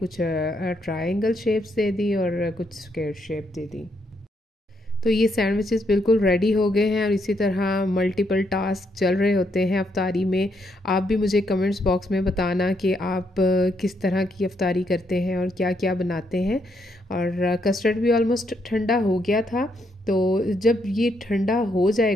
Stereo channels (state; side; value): normal; both; correlation 0.76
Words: ट्रायंगल शेप्स दे दी और कुछ स्क्वायर शेप दे दी। तो ये सैंडविचेस बिल्कुल रेडी हो गए हैं, और इसी तरह मल्टीपल टास्क चल रहे होते हैं अफ्तारी में। आप भी मुझे कमेंट्स बॉक्स में बताना कि आप किस तरह की अफ्तारी करते हैं और क्या क्या बनाते हैं। और कस्टर्ड भी ऑलमोस्ट ठंडा हो गया था, तो जब ये ठंडा हो